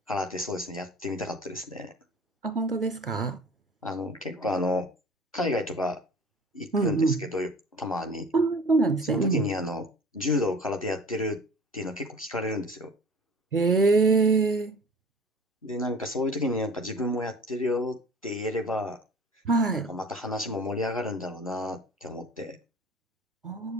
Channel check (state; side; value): normal; both; correlation 0.44